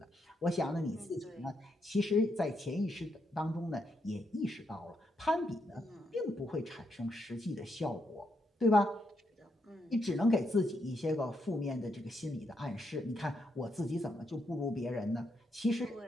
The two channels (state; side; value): normal; both; correlation 0.79